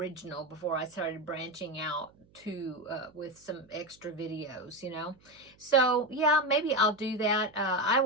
before I started branching out to with some extra videos, So yeah, maybe I'll do that. I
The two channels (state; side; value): noise; right; hum, 30 dB below the sound